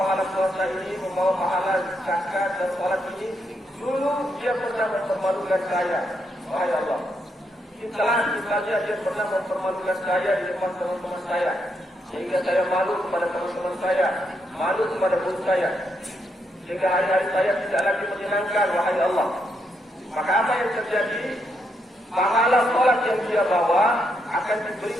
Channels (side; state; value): both; normal; correlation 0.79